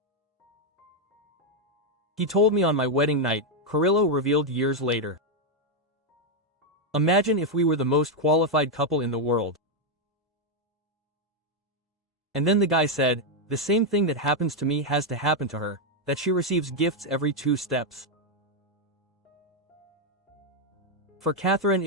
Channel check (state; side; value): normal; both; correlation 0.01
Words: He told me on my wedding night, Carrillo revealed years later. Imagine if we were the most qualified couple in the world. And then the guy said, the same thing that happens to me has to happen to her, that she receives gifts every 2 steps. For Catherine